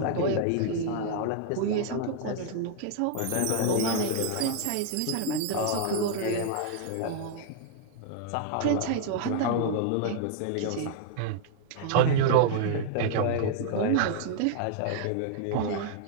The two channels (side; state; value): both; different; correlation 0.00